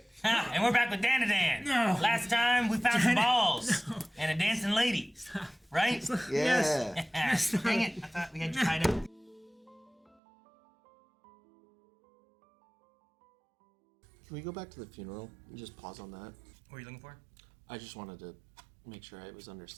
And we're back with Dandadan. No. Last time we found some balls and a dancing lady. Right? Yeah. Dang it. I thought we had you tied up. Can we go back to the funeral and just pause on that? What are you looking for? I just wanted to make sure I was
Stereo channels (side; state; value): left; drops out; at 10.2 s